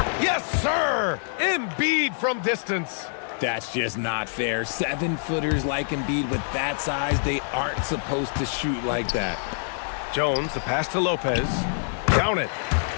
Yes, sir! Embiid from distance. That's just not fair. 7-footers like Embiid with that size, they aren't supposed to shoot like that. Jones, the pass to Lopez. Count it.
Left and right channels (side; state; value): right; silent; 57 dB below the other